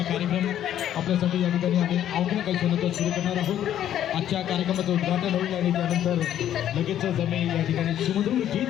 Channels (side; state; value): right; quieter; 11.1 dB